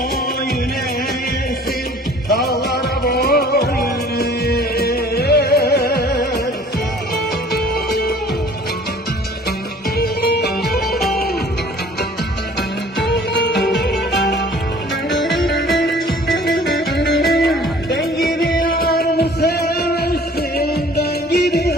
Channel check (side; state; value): both; normal; correlation 0.51